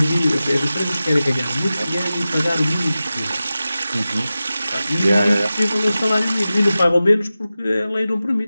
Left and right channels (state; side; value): inverted; both; correlation -0.95